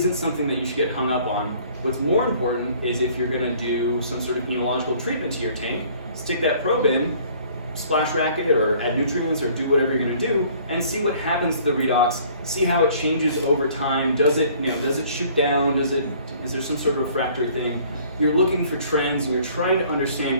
something that you should get hung up on. What's more important is if you're gonna do some sort of enological treatment to your tank, stick that probe in, splash rack it or add nutrients or do whatever you're going to do, and see what happens to the redox, see how it changes over time. Does it shoot down? Is there some sort of refractory thing? You're looking for trends and you're trying to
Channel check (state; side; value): inverted; both; correlation -0.55